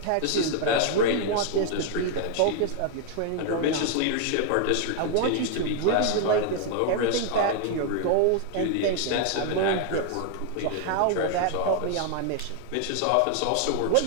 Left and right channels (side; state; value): both; different; correlation 0.00